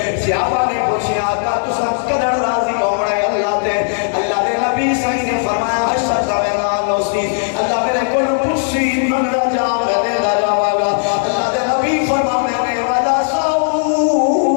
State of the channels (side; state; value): right; silent; digital silence